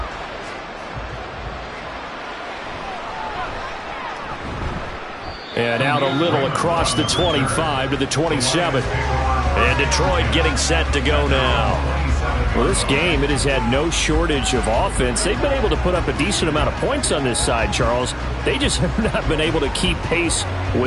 And out a little across the 25 to the 27. And Detroit getting set to go now. Well, this game, it has had no shortage of offense. They've been able to put up a decent amount of points on this side, Charles. They just have not been able to keep pace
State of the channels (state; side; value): identical; both; correlation 1.00